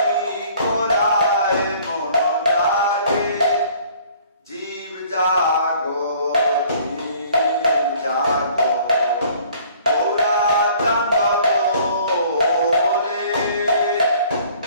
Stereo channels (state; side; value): inverted; both; correlation -0.55